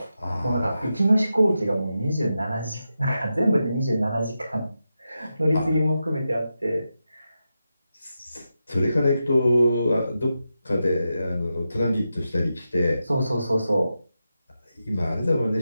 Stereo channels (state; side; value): inverted; both; correlation -0.89